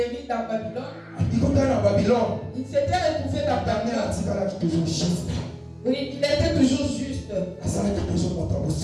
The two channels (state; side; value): identical; both; correlation 1.00